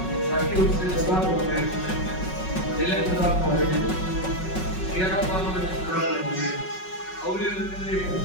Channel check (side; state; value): right; late; 5.4 ms